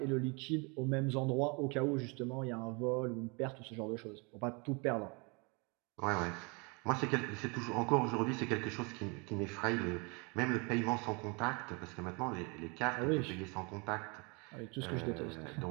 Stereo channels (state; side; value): quieter; left; 31.0 dB